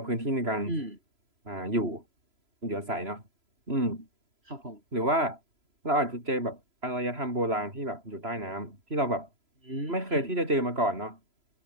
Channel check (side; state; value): left; late; 3.0 ms